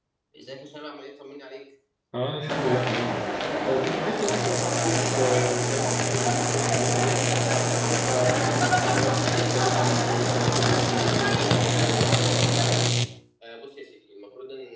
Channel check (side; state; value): both; identical; correlation 1.00